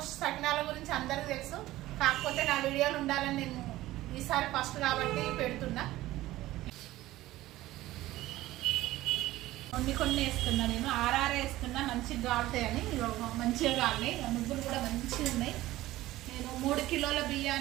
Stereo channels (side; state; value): left; quieter; 16.4 dB